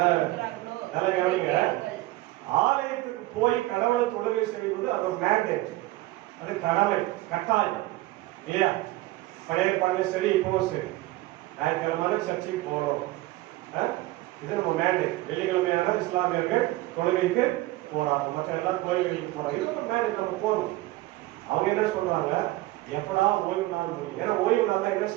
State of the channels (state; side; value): quieter; left; 18.3 dB